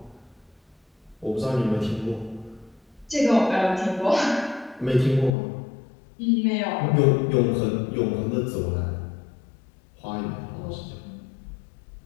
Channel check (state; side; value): drops out; right; at 5.3 s